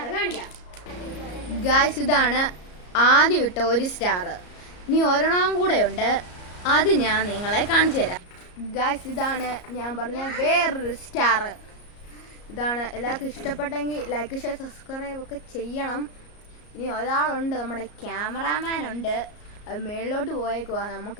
കാണിക്കാം. ഗായ്സ്, ഇതാണ് ആദ്യം ഇട്ട ഒരു സ്റ്റാർ. ഇനി ഒരെണ്ണം കൂടെ ഉണ്ട്, അത് ഞാൻ നിങ്ങളെ കാണിച്ചു തരാം. ഗായ്സ്, ഇതാണ് ഞാൻ പറഞ്ഞ വേറൊരു സ്റ്റാർ. ഇതാണ്. എല്ലാവർക്കും ഇഷ്ടപ്പെട്ടെങ്കിൽ ലൈക്ക് ഷെയർ സബ്സ്ക്രൈബ് ഒക്കെ ചെയ്യണം. ഇനി ഒരാളുണ്ട്, നമ്മുടെ ക്യാമറാമാൻ ഉണ്ട്. അത് മേളിലോട്ട് പോയേക്കുവാ.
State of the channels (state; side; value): late; right; 34 ms